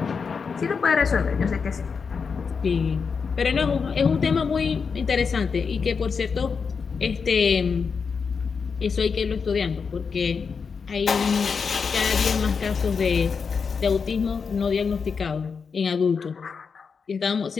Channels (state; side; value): quieter; right; 5.6 dB